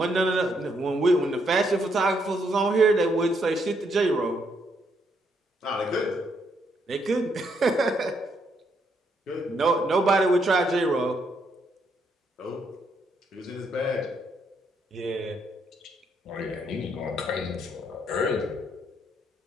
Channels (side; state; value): both; normal; correlation 0.74